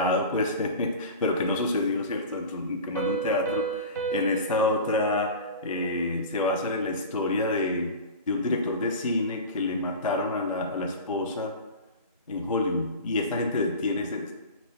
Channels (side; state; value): both; inverted; correlation -0.32